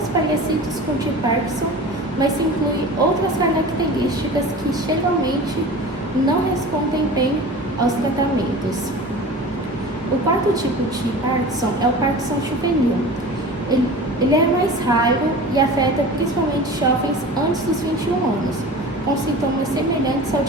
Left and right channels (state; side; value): normal; both; correlation 0.36